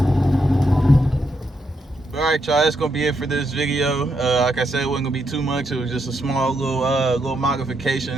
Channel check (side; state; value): both; normal; correlation 0.80